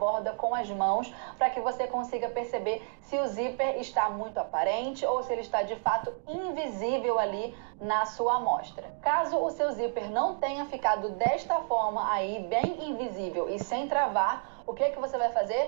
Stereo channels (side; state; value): left; silent; digital silence